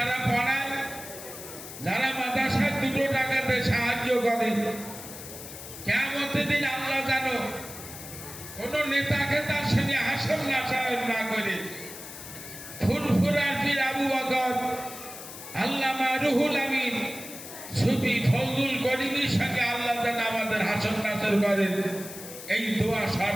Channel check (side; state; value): left; noise; hiss, 12 dB below the sound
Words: পড়ায়, যারা মাদ্রাসায় 2 টাকাতে সাহায্য করে, কিয়ামতের দিন আল্লাহ জানো কোন নেতাকে তার সঙ্গে হাসর নাসায়ন না করে ফুরফুরার পীর আবু বকর, আল্লামা রুহুল আমিন, সুফি ফজলুল করিমের সঙ্গে আল্লাহ যেন আমাদের হাসর নাসর করেন, এই দোয়া